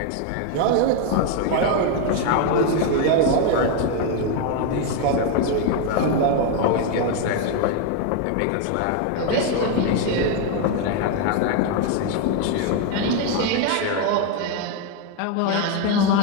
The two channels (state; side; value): different; both; correlation 0.01